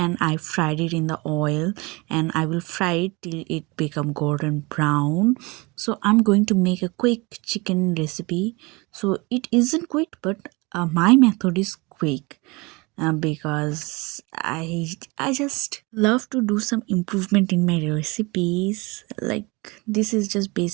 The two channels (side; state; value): left; quieter; 25.7 dB